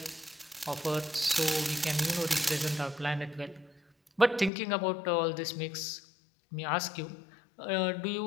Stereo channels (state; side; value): drops out; right; at 4.5 s